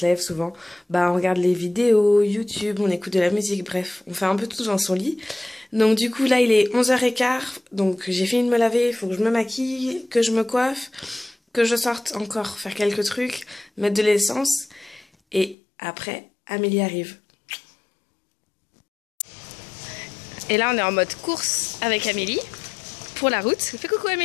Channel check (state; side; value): drops out; right; at 15.6 s